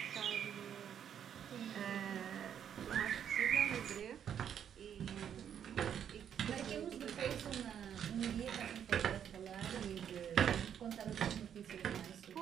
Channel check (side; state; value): left; quieter; 8.9 dB